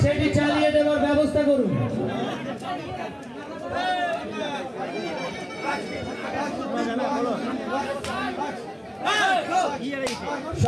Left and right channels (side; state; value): both; identical; correlation 1.00